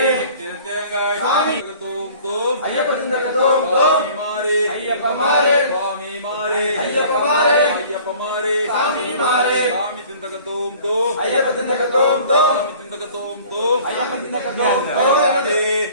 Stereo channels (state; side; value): inverted; both; correlation -0.49